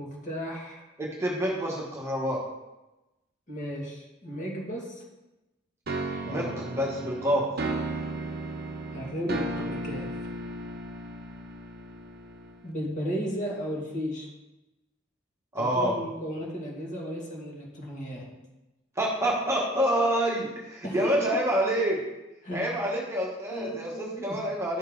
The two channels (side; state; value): both; normal; correlation 0.51